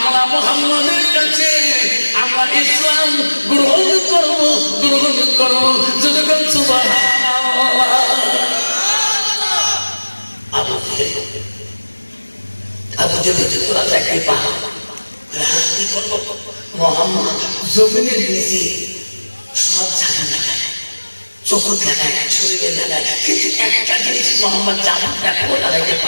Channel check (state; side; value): inverted; both; correlation -1.00